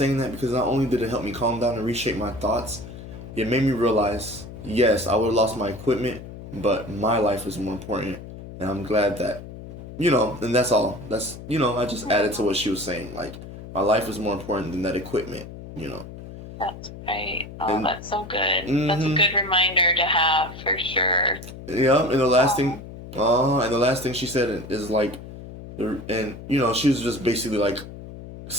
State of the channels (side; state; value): left; noise; hum, 13 dB below the sound